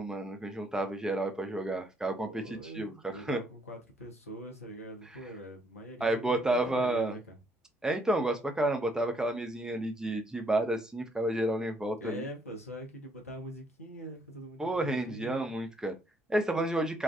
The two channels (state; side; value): normal; both; correlation 0.70